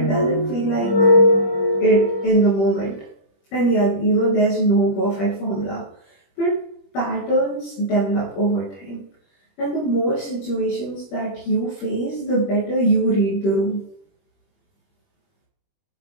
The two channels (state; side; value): late; right; 21 ms